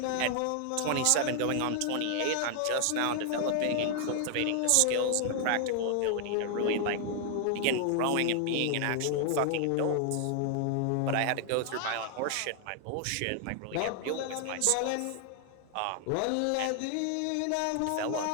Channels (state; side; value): different; both; correlation 0.00